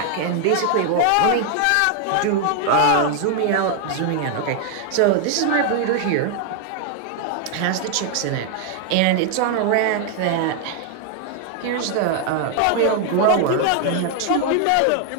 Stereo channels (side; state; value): both; different; correlation 0.00